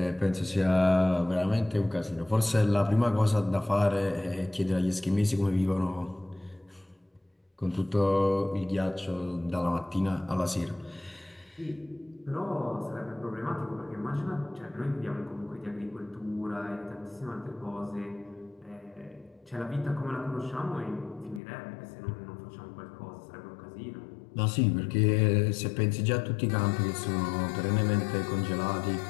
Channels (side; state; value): right; drops out; at 21.4 s